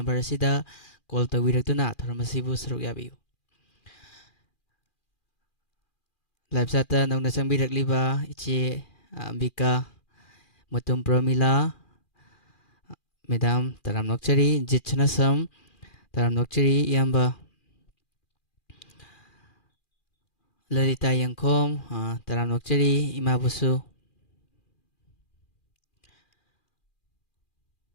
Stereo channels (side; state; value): right; late; 2.4 ms